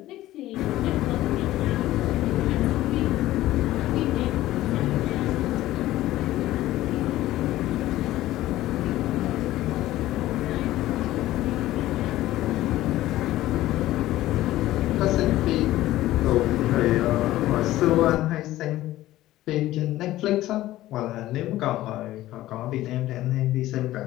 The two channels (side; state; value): right; quieter; 15.4 dB